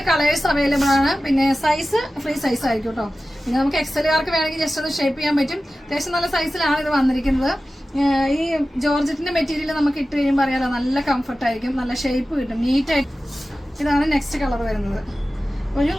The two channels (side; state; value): both; normal; correlation 0.95